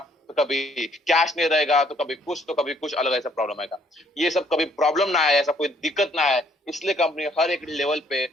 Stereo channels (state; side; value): normal; both; correlation 0.65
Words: तो कभी कैश नहीं रहेगा, तो कभी कुछ अलग ऐसा प्रॉब्लम आएगा। ये सब कभी प्रॉब्लम ना आए, ऐसा कोई दिक्कत ना आए, इसलिए कंपनी हर एक लेवल पे